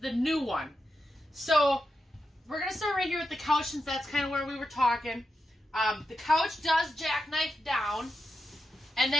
new one. So we're going to start right here with the couch since that's kind of where we were talking. The couch does jackknife down. And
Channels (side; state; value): both; normal; correlation 0.87